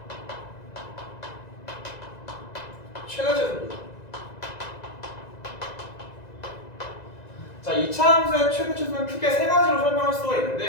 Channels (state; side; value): late; right; 2.0 ms